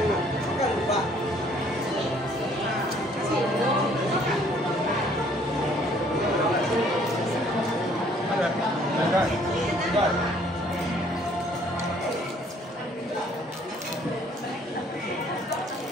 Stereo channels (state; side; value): normal; both; correlation 0.60